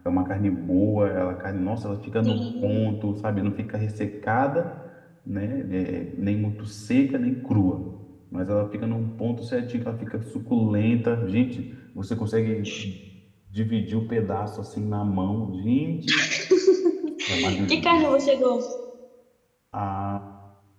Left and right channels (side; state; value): both; identical; correlation 1.00